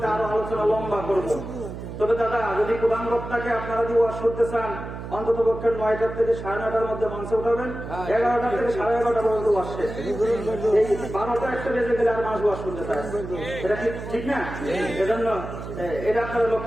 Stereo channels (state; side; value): noise; right; hum, 9 dB below the sound